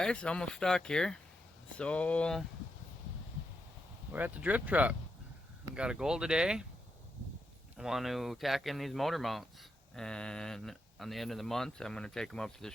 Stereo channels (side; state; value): both; normal; correlation 0.83